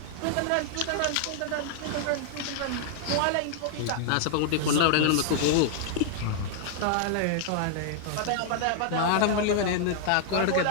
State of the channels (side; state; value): both; different; correlation 0.00